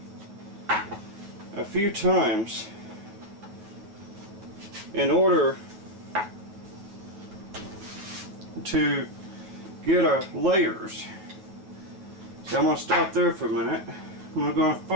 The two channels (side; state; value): left; late; 9.5 ms